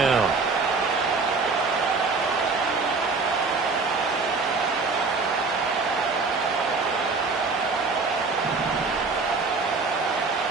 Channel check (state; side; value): quieter; left; 4.2 dB